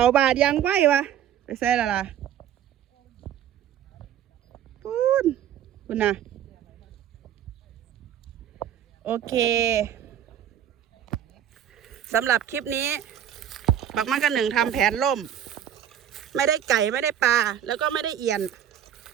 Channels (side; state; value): left; quieter; 10.2 dB